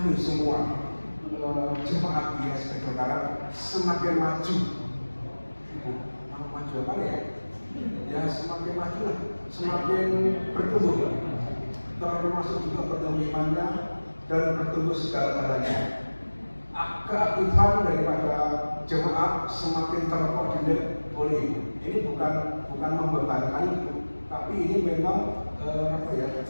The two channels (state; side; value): inverted; both; correlation -1.00